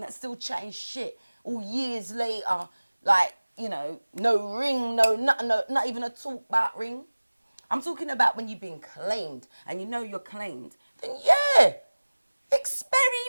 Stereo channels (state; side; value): inverted; both; correlation -1.00